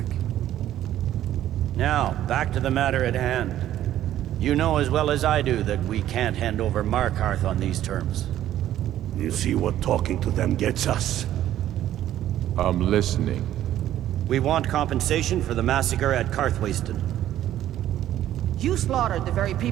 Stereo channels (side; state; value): left; quieter; 12.4 dB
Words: Now, back to the matter at hand. You know as well as I do that we can't hand over Markarth on these terms. You see what talking to them gets us? I'm listening. We want compensation for the massacre at Karthwasten. You slaughtered the very